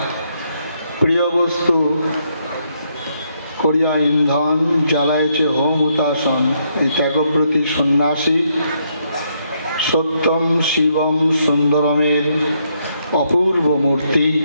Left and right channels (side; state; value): both; inverted; correlation -0.75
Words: প্রিয় বস্তু করিয়া ইন্ধন জ্বালায়ছে হোম হুতাসন। এই ত্যাগব্রতী সন্ন্যাসী সত্যম শিবম সুন্দরমের অপূর্ব মূর্তি।